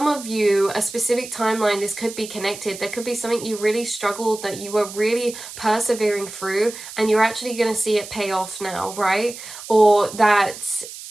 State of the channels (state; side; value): noise; right; hiss, 13 dB below the sound